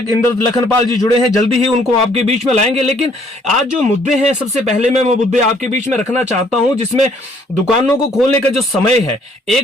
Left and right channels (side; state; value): both; normal; correlation 0.63